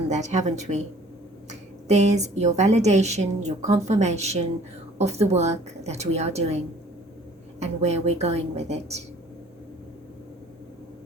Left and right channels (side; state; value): both; normal; correlation 0.53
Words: that, haven't we? There's your validation, your confirmation of the work that we are doing and where we're going with it.